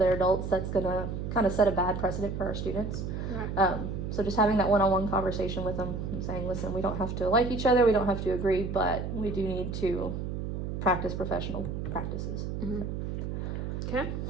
adults, that's going to kind of set a bad precedent for our students. Right. So just having that one-on-one conversation with them and saying, listen, we don't have to like each other, we don't have to agree, but we do need to practice professional practices. Okay.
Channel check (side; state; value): right; noise; hum, 4 dB below the sound